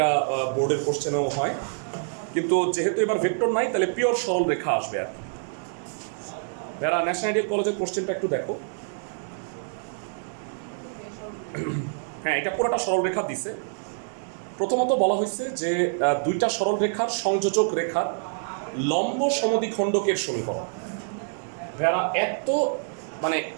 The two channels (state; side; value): silent; left; 61 dB below the other